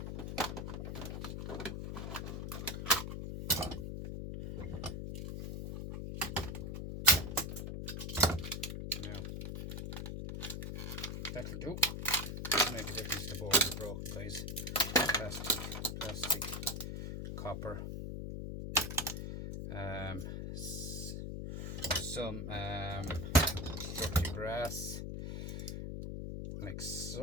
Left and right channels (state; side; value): noise; left; hum, 5 dB below the sound